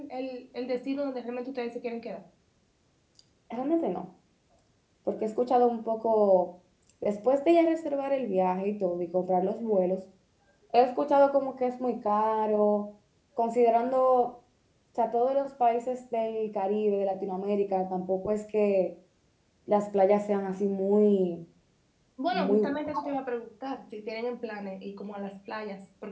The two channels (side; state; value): both; identical; correlation 1.00